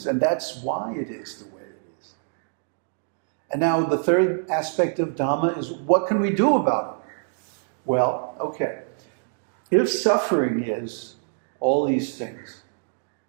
and that's why it is the way it is. And now the third aspect of Dhamma is, what can we do about it? Well, okay, if suffering is all these things,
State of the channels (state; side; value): silent; left; digital silence